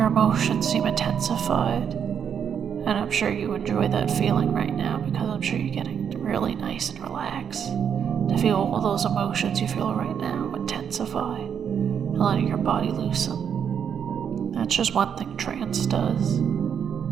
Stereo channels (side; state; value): left; quieter; 7.9 dB